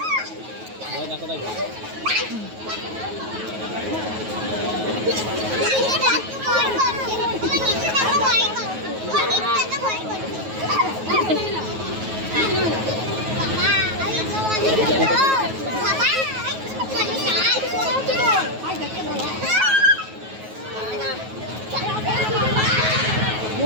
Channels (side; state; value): left; late; 9.3 ms